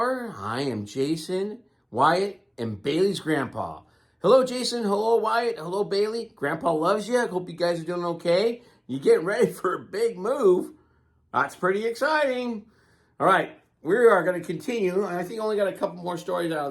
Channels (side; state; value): both; identical; correlation 1.00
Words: I am Jason, Wyatt, and Bailey's grandpa. Hello Jason, hello Wyatt, hello Bailey. Grandpa loves you. I hope you guys are doing okay. You getting ready for a big move. That's pretty exciting. All right, we are going to continue. I think I only got a couple more stories out